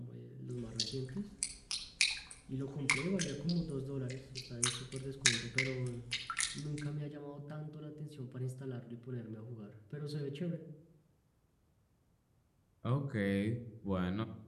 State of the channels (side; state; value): both; identical; correlation 1.00